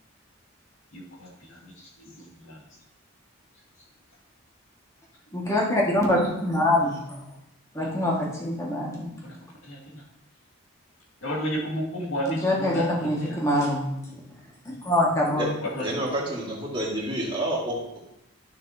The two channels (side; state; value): both; normal; correlation 0.41